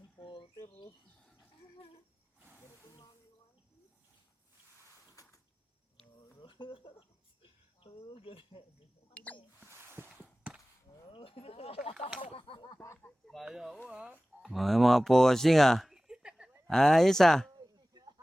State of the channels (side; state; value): both; normal; correlation 0.98